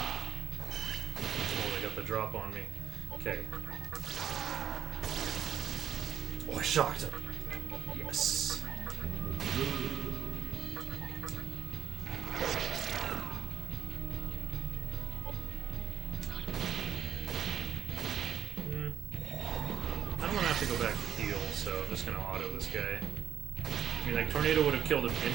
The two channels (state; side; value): quieter; left; 9.2 dB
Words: they got the drop on me. Okay. Oh, I shocked him. Yes. To go back to heal, so I'm just gonna auto this guy. I mean, like, Tornado would have killed him